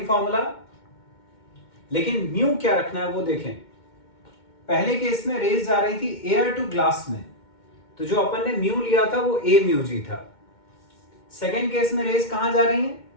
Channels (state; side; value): late; right; 2.2 ms